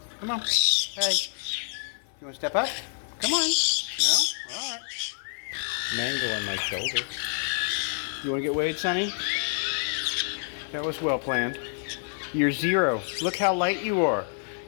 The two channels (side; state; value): right; silent; 60 dB below the other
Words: Come on. Hey. You want to step up? Come on. No? Alright. Mango on my shoulder. You want to get weighed, Sunny? That was well planned. You're 0. Look how light you are.